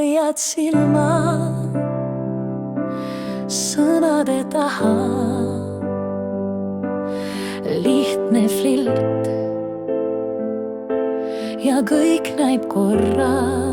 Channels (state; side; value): identical; both; correlation 1.00